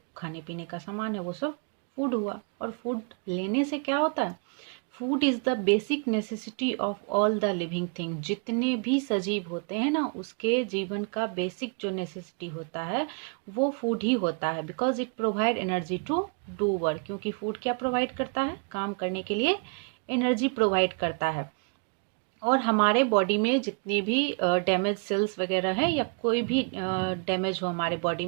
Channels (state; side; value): quieter; left; 38.4 dB